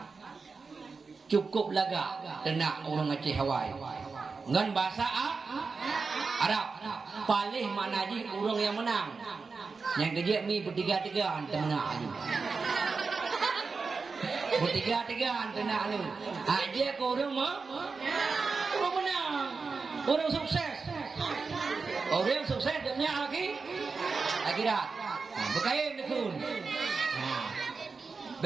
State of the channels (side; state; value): left; quieter; 4.6 dB